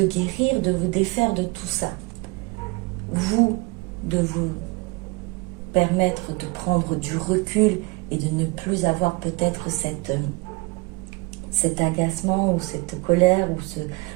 guérir, de vous défaire de tout ça. Vous, de vous permettre de prendre du recul et de ne plus avoir peut-être cet agacement ou cette colère ou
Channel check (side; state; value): left; quieter; 25.3 dB